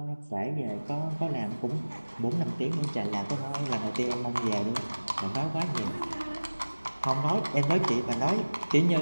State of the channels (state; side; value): inverted; both; correlation -1.00